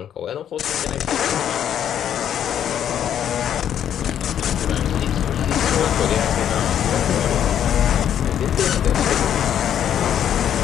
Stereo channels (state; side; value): quieter; right; 9.8 dB